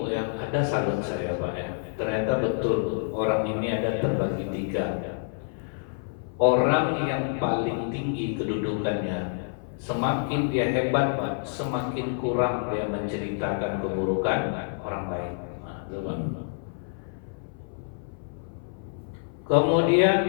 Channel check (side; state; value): right; silent; 56 dB below the other